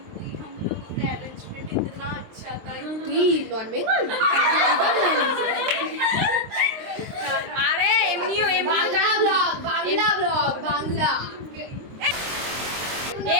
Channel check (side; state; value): left; late; 23 ms